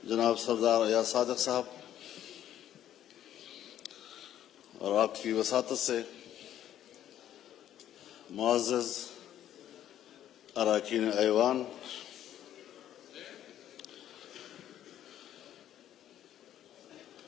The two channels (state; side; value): quieter; right; 11.4 dB